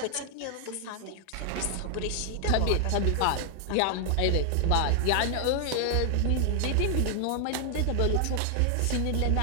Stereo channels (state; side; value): different; both; correlation 0.00